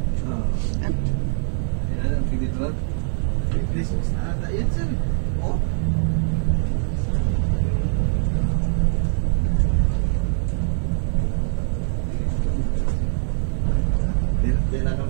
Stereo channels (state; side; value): silent; left; digital silence